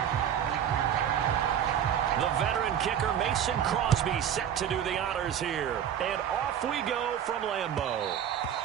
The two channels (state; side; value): quieter; left; 9.5 dB